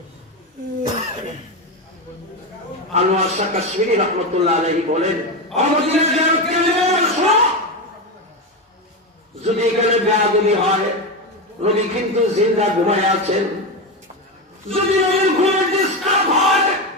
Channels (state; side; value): normal; both; correlation 0.15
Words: আনোয়ার শাহ কাশ্মীরি রহমতুল্লাহ আলাইহি বলেন, যদি এখানে বেয়াদবি হয়, নবী কিন্তু জিন্দা ঘুমায় আছেন। যদি নবীর ঘুমের ডিস্টার্ব হয়,